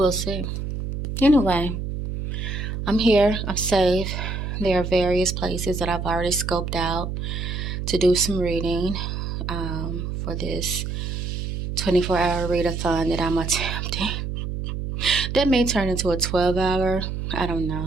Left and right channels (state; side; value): noise; right; hum, 4 dB below the sound